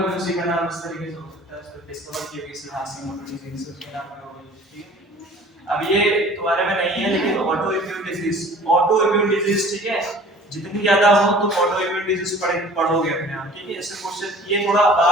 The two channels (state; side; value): normal; both; correlation 0.48